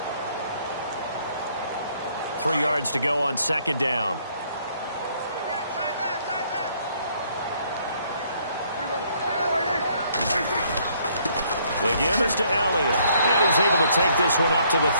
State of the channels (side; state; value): both; inverted; correlation -0.66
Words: Three yards to go on 2nd down. The give is to Elliott. And he's able to take this one up to the